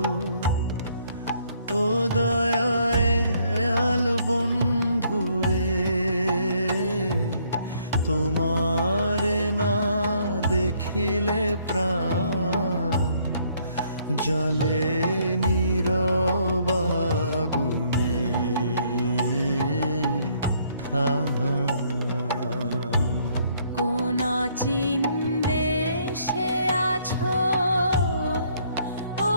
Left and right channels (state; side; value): inverted; both; correlation -0.67